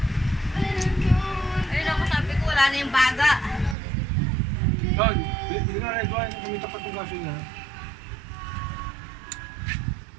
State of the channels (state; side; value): drops out; left; at 3.8 s